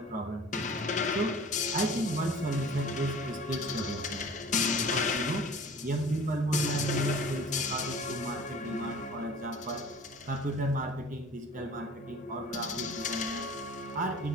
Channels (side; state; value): both; normal; correlation 0.44